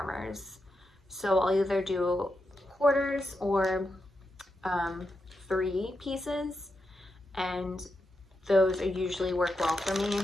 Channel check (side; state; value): both; normal; correlation 0.86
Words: So I'll either do quarters or 3 pieces, and those usually work well for me.